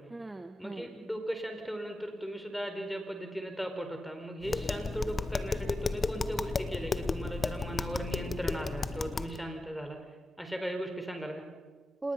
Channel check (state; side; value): normal; both; correlation 0.90